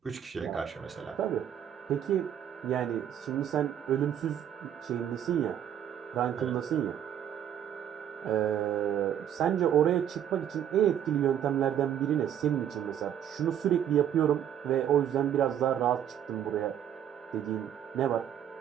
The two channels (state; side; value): quieter; left; 9.8 dB